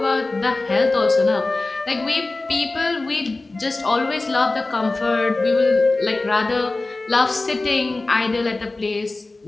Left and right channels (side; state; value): right; quieter; 3.2 dB